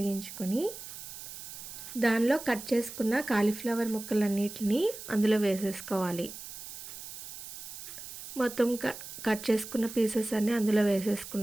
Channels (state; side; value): noise; right; hiss, 11 dB below the sound